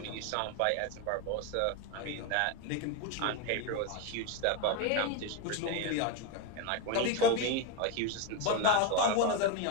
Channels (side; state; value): both; different; correlation 0.02